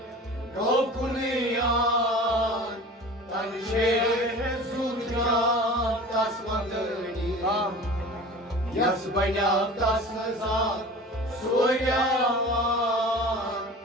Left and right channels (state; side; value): normal; both; correlation 0.39